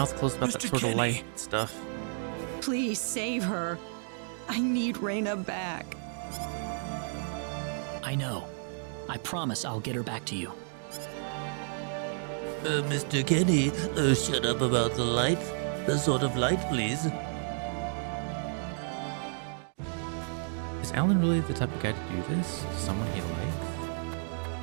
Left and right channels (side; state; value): left; silent; 57 dB below the other